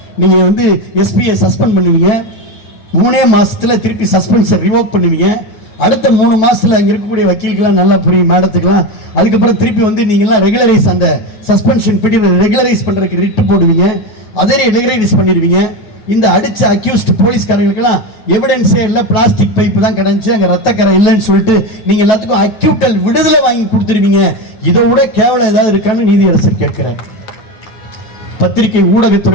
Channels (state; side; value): late; right; 8.9 ms